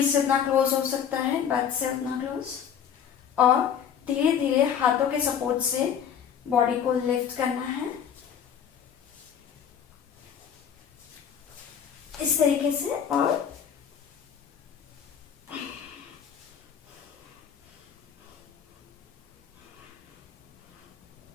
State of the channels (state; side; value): quieter; right; 8.3 dB